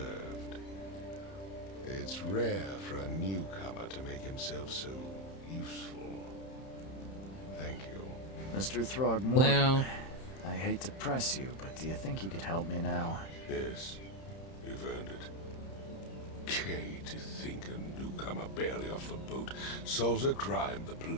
It's rare for a newcomer to make himself so useful. Thank you. Mr. Throgmorton, Well, I hate to press you, but do you think you could help me now? Yes, you've earned it. Gay to think a newcomer barely off the boat solves a crime the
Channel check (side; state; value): right; late; 31 ms